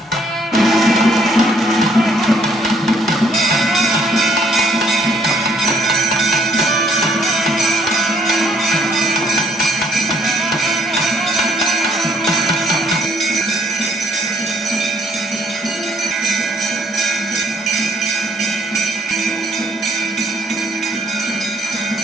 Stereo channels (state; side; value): normal; both; correlation 0.64